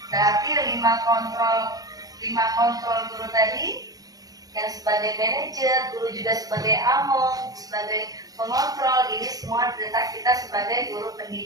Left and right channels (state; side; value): late; left; 0.18 ms